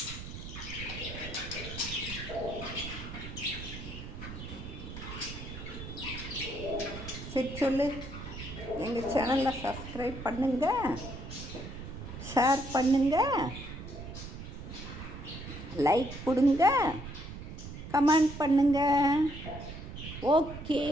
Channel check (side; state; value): right; noise; rumble, 10 dB below the sound